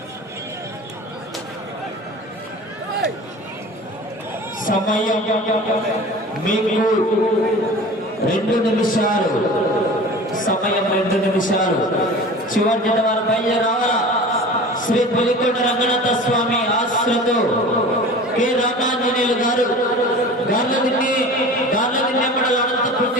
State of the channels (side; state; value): both; normal; correlation 0.38